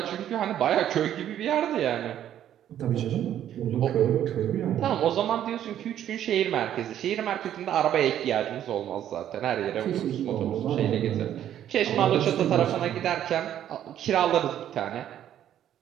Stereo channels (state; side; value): quieter; left; 10.9 dB